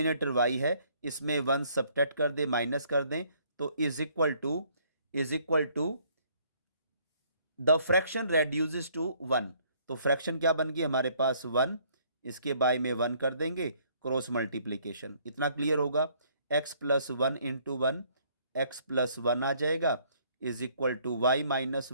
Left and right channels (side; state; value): both; inverted; correlation -0.64